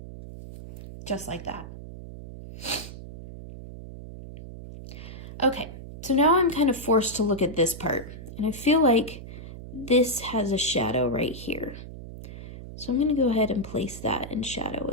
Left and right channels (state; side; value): noise; right; hum, 12 dB below the sound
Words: Just like that. Okay, so now I'm kind of forced to look at this part, and I feel like this has a shadow right here. So I'm going to go ahead and place that in shadow